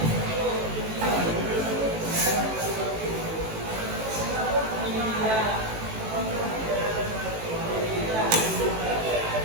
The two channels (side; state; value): left; late; 18 ms